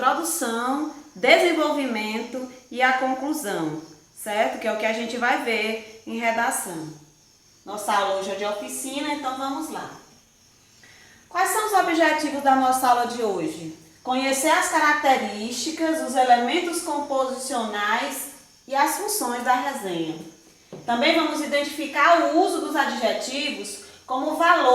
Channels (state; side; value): identical; both; correlation 1.00